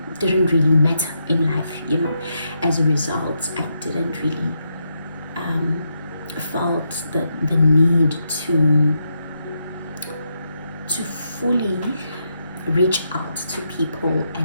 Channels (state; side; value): inverted; both; correlation -0.82